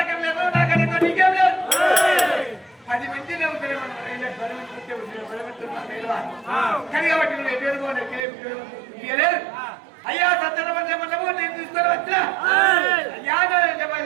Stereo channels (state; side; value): drops out; left; at 8.2 s